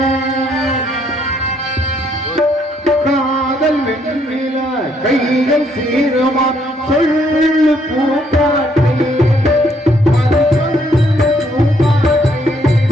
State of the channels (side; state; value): both; normal; correlation 0.69